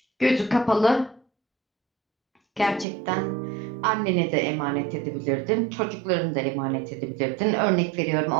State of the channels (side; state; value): left; drops out; at 2.9 s